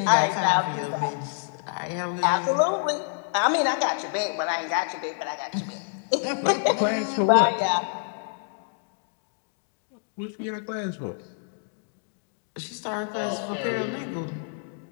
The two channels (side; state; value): right; silent; digital silence